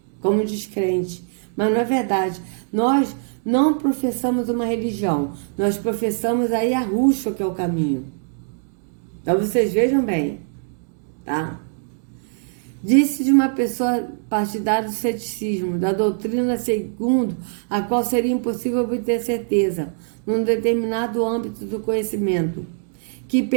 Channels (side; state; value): left; silent; digital silence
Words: como descrentes. Mas não é verdade. Nós não professamos uma religião, nós professamos a Yahushua, que é o caminho. Então vocês vejam bem, tá? Disse de uma pessoa partidária do ceticismo, da doutrina segundo a qual seria impossível obter certeza, num determinado âmbito do conhecimento, que